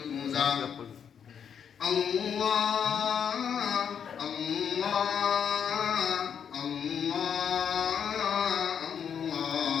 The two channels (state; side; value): quieter; right; 7.8 dB